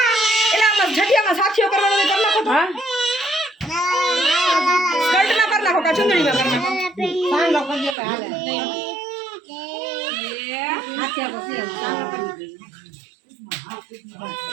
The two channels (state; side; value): drops out; left; at 8.0 s